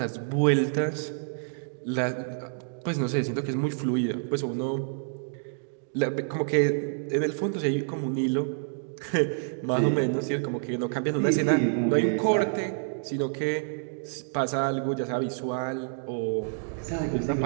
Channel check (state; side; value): silent; left; digital silence